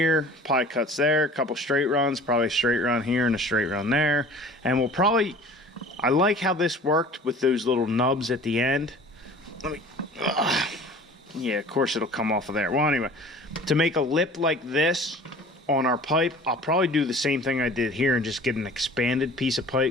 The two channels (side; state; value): both; normal; correlation 0.44